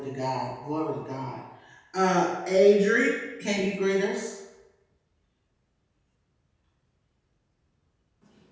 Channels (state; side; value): identical; both; correlation 1.00